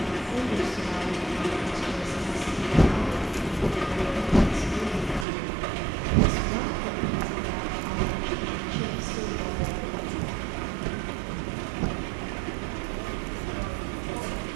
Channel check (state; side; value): drops out; left; at 5.2 s